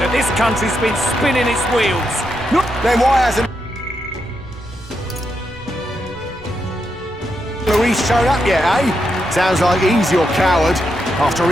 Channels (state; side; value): normal; both; correlation 0.83